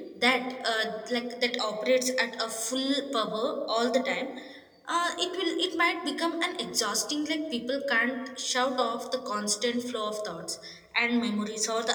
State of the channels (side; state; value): both; identical; correlation 1.00